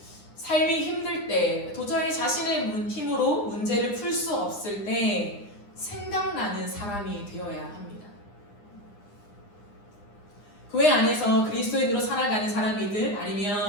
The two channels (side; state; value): right; late; 9.8 ms